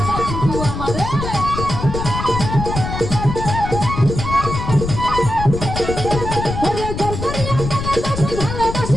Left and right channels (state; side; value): noise; left; rumble, 5 dB below the sound